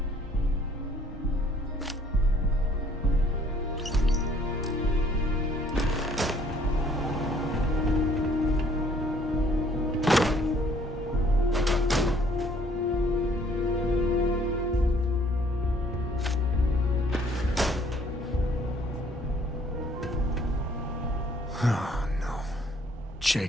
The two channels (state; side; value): normal; both; correlation 0.61